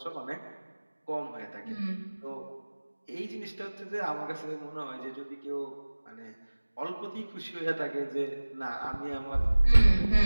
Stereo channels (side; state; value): both; inverted; correlation -1.00